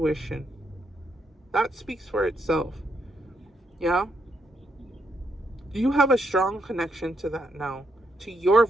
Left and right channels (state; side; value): normal; both; correlation 0.78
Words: That speaks for itself. Yeah? You have a strong connection to that now, to your